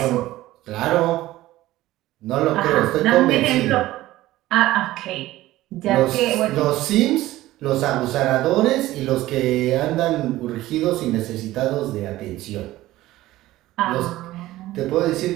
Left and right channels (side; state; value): left; quieter; 16.2 dB